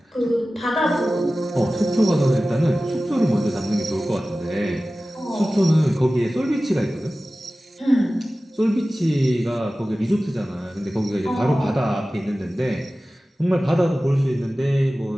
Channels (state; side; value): normal; both; correlation 0.96